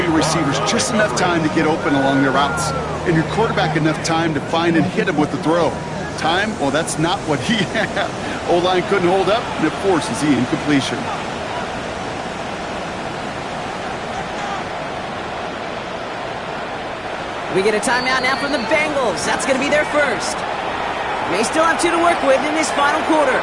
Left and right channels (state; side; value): identical; both; correlation 1.00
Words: receivers just enough time to get open along their routes, and your quarterback enough time to find and hit him with the throw. Time, well, that's not what he had. O-line couldn't hold up, and it forces the incompletion. We get a timeout now from the Bengals. That's going to be their first. They still have 2 to work with in this final quarter.